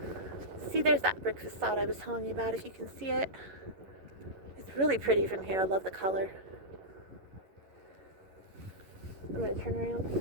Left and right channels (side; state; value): left; late; 11 ms